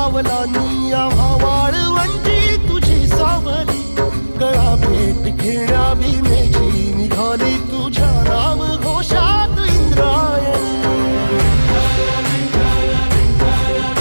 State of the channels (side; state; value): both; inverted; correlation -1.00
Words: आम्हा वाळवंटी तुझी सावली गळा भेट घेण्या भीमेची निघाली तुझ्या नाम घोषात इंद्रायणी